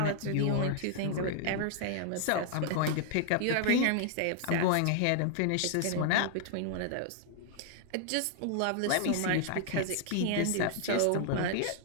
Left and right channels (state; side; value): different; both; correlation 0.00